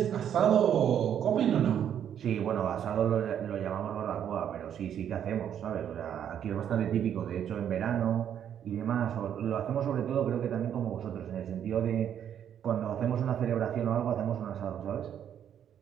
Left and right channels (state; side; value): quieter; left; 9.4 dB